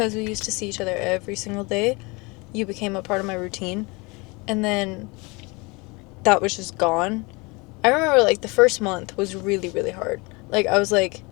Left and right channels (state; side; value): quieter; right; 26.7 dB